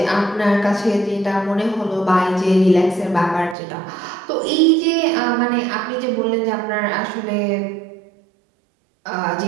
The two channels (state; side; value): drops out; left; at 3.6 s